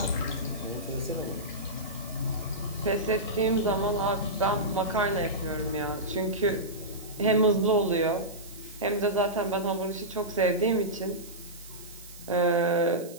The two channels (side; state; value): right; noise; hiss, 18 dB below the sound